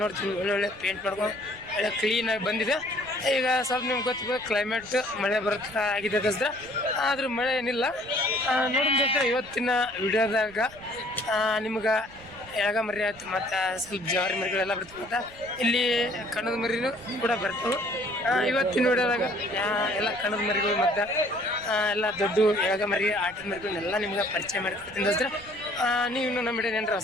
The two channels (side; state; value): right; noise; rumble, 22 dB below the sound